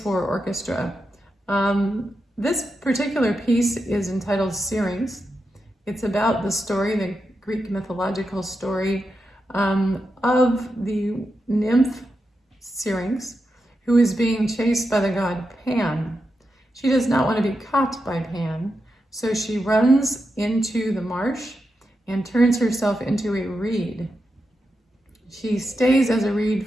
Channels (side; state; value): both; normal; correlation 0.88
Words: orchestra. This particular piece is entitled Syrinx. It's about the story, the Greek mythological story of the nymph Syrinx, who is being chased by the god Pan. She does not want to be caught by Pan, so she runs into the marsh and turns herself into a reed. She stays as a reed